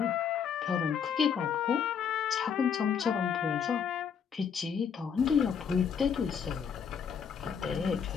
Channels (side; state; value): right; quieter; 7.2 dB